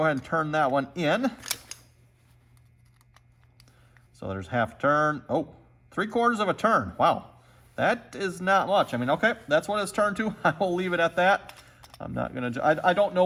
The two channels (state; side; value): identical; both; correlation 1.00